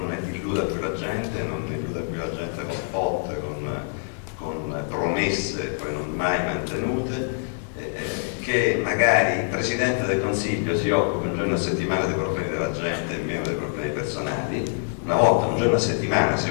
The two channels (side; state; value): right; silent; 62 dB below the other